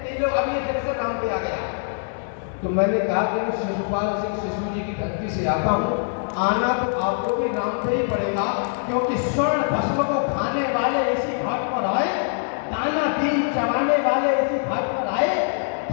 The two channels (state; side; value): silent; right; digital silence